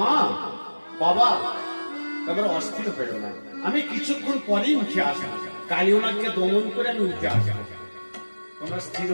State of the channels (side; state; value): both; inverted; correlation -1.00